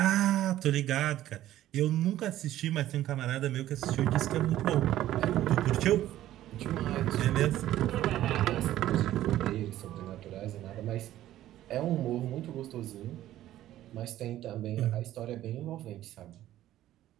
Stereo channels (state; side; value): quieter; left; 13.6 dB